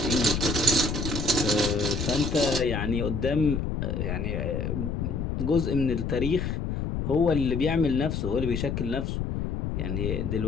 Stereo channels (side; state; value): left; noise; rumble, 2 dB below the sound